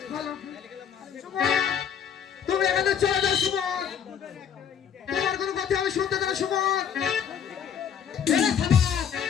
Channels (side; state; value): right; quieter; 8.1 dB